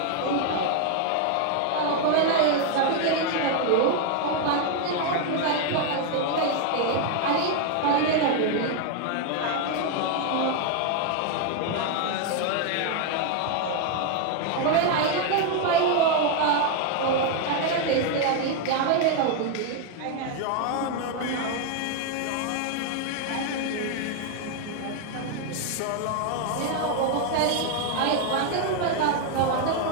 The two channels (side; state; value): both; different; correlation 0.00